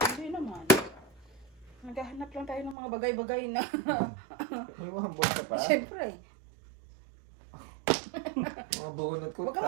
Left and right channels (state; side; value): drops out; left; at 2.8 s